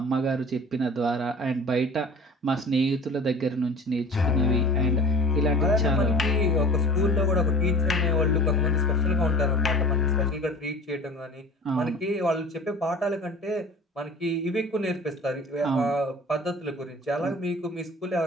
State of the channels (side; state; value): both; normal; correlation 0.41